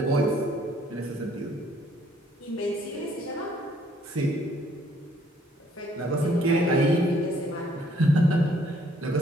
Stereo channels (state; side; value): normal; both; correlation 0.64